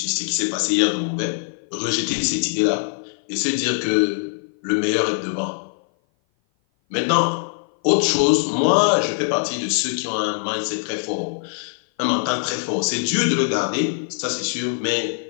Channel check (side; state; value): right; silent; 57 dB below the other